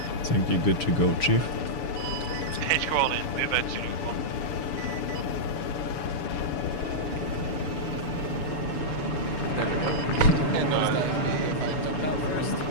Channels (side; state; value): right; late; 7.0 ms